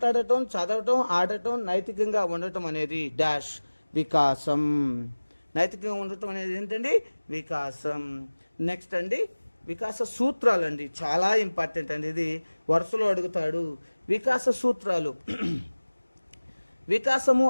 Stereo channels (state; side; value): inverted; both; correlation -1.00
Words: చదవటం, ఆడటం, నైతికంగా ఉండటం అనేది డాష్, వికాసం. నైతికంగా ఉండటం అనేది ఏంటండి? వికాసం. నెక్స్ట్ అండి, వికాస సూత్రాలు అండి, చాలా ఇంపార్టెంట్ అండి. ఇది వరుసలో అడుగుతాడు. వికాస సూత్రాలు. వికాసము